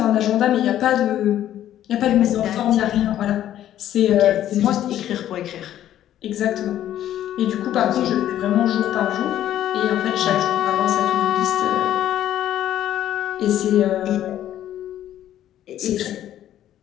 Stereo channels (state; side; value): quieter; right; 11.9 dB